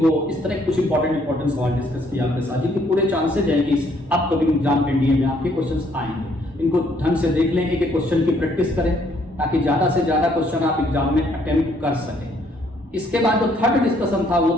इस तरह कुछ इंपॉर्टेंट सवाल डिस्कस किया आपके साथ, जिनके पूरे चांसेज हैं कि अपकमिंग एग्जाम एनडीए में आपके क्वेश्चंस आएंगे। इनको ढंग से देख लें, एक एक क्वेश्चन की प्रैक्टिस करें ताकि ज्यादा से ज्यादा क्वेश्चन आप एग्जाम में अटेम्प्ट कर सकें। इसके बाद जो थर्ड डिस्कशन था वो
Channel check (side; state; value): both; normal; correlation 0.67